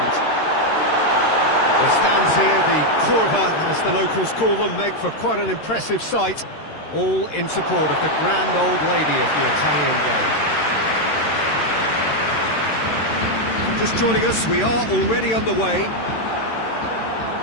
The stands here, the curva, as the locals call them, make for quite an impressive sight, all in support of the grand old lady of the Italian game. Just joining us, we are already underway.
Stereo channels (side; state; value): right; late; 13 ms